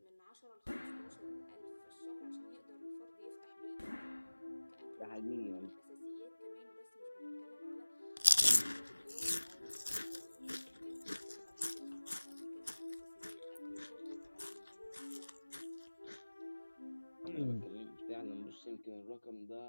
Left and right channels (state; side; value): inverted; both; correlation -1.00